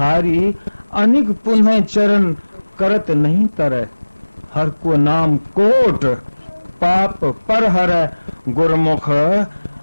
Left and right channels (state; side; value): inverted; both; correlation -1.00